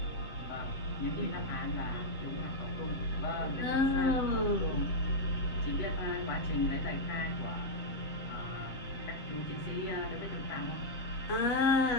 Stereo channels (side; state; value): right; late; 7.6 ms